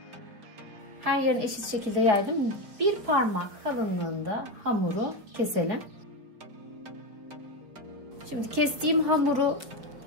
Her yerine eşit şekilde yaydım. Bir parmak kalınlığında hamuru keselim. Şimdi kestiğim hamuru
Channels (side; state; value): left; late; 5.5 ms